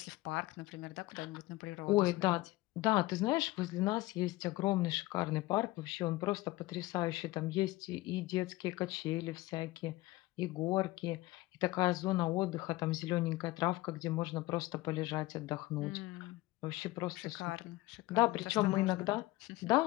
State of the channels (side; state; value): right; quieter; 19.3 dB